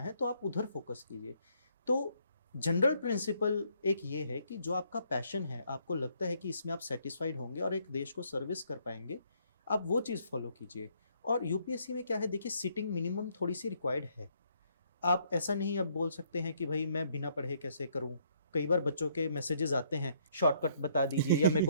तो आप उधर फोकस कीजिए। तो जनरल प्रिंसिपल एक ये है कि जो आपका पैशन है, आपको लगता है कि इसमें आप सेटिस्फाइड होंगे और एक देश को सर्विस कर पाएंगे, आप वो चीज़ फॉलो कीजिए। और यूपीएससी में क्या है, देखिए सिटिंग मिनिमम थोड़ी सी रिक्वायर्ड है। आप ऐसा नहीं अब बोल सकते हैं कि भाई मैं बिना पढ़े कैसे करूं। कई बार बच्चों के मैसेजेस आते हैं, शॉर्टकट बता दीजिए या मेरे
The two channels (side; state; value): both; inverted; correlation -0.68